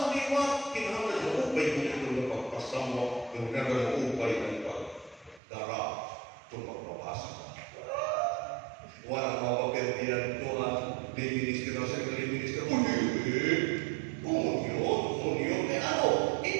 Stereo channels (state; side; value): drops out; left; at 5.4 s